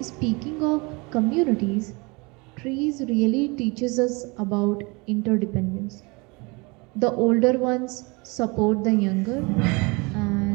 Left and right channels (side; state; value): left; quieter; 27.7 dB